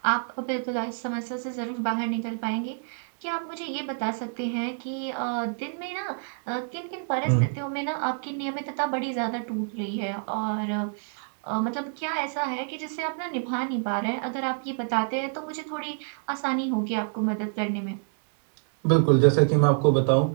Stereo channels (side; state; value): left; silent; 60 dB below the other